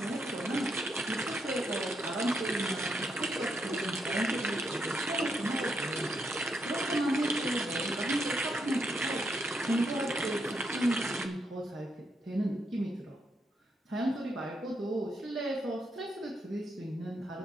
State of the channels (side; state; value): both; normal; correlation 0.78